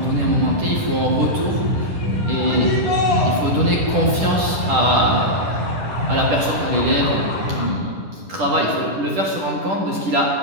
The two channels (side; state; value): left; late; 10 ms